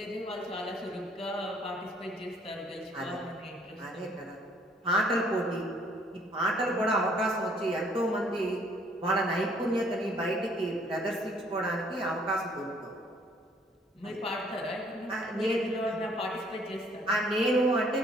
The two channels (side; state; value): both; normal; correlation 0.62